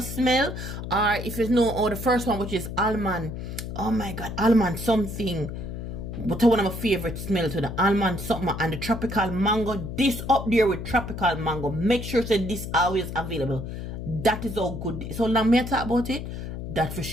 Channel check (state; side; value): noise; left; hum, 7 dB below the sound